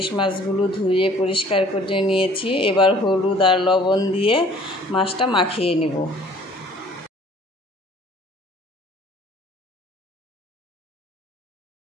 মাছগুলো ধুয়ে পরিষ্কার করে নিয়েছি। এবার হলুদ আর লবণ দিয়ে মাছটা মাখিয়ে নেব।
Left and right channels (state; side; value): normal; both; correlation 0.54